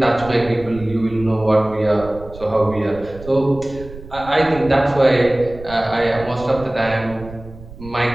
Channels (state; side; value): noise; right; rumble, 16 dB below the sound